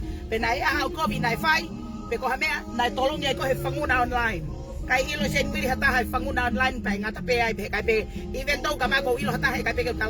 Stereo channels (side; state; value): both; identical; correlation 1.00